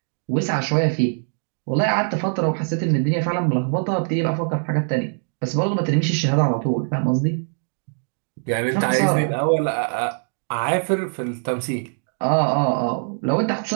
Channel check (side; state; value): left; silent; digital silence